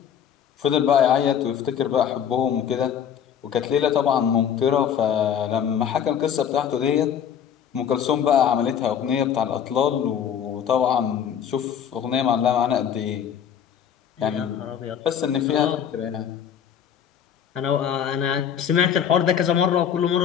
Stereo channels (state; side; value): quieter; right; 8.6 dB